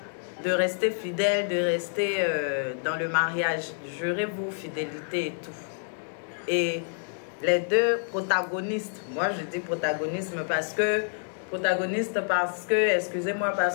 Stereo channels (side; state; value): right; silent; digital silence